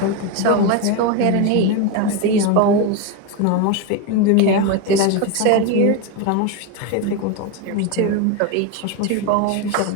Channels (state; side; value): different; both; correlation 0.03